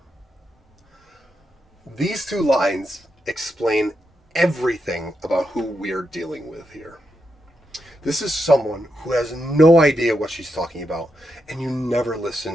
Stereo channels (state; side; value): normal; both; correlation 0.84